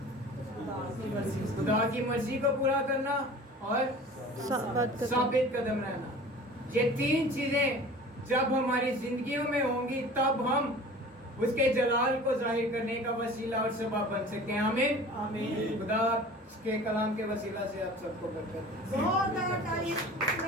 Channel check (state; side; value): normal; both; correlation 0.42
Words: خدا کی مرضی کو پورا کرنا اور ثابت قدم رہنا۔ یہ 3 چیزیں جب ہماری زندگیوں میں ہوں گی تب ہم اس کے جلال کو ظاہر کرنے کا وسیلہ اور سبب بن سکتے ہیں۔ آمین۔ آمین۔ خدا اس کے کلام کے وسیلہ سے آپ سب کو برکت دے۔ زوردار تعریف،